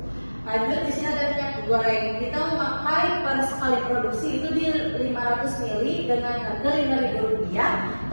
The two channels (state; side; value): inverted; both; correlation -1.00